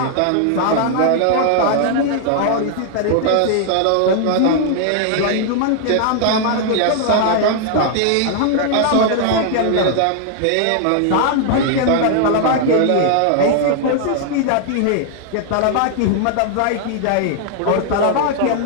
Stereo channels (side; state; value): both; different; correlation 0.00